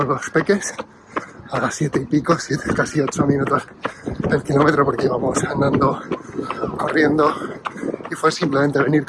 los peques a las 7 y pico, casi 8 minutos el kilómetro, porque íbamos andando, corriendo, y fue simplemente venir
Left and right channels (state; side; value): identical; both; correlation 1.00